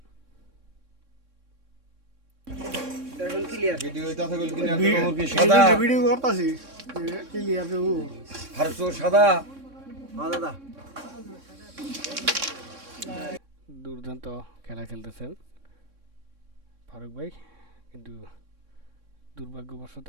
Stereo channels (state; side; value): late; left; 3.6 ms